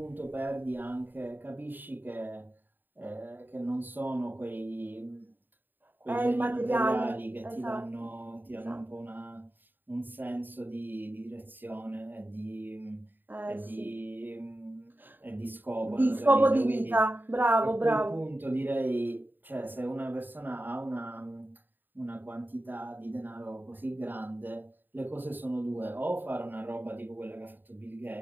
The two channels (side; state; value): left; late; 0.092 ms